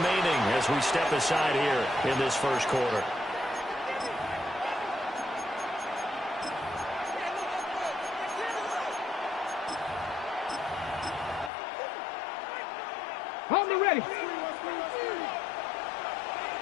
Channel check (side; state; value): right; drops out; at 11.5 s